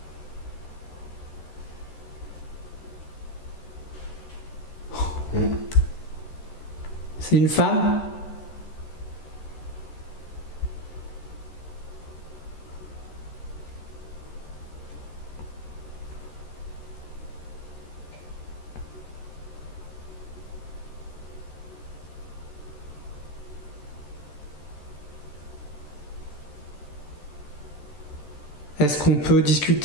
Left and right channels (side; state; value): right; late; 13 ms